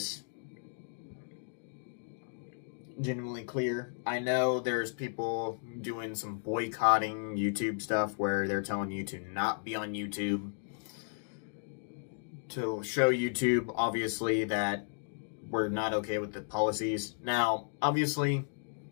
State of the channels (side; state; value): right; silent; digital silence